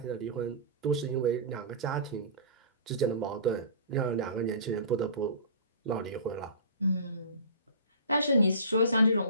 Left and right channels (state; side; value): inverted; both; correlation -0.37